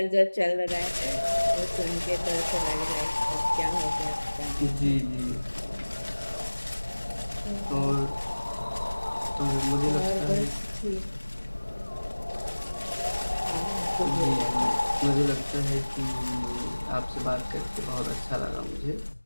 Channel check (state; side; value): inverted; both; correlation -1.00